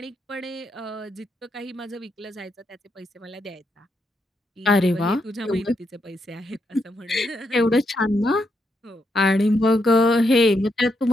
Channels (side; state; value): both; normal; correlation 0.80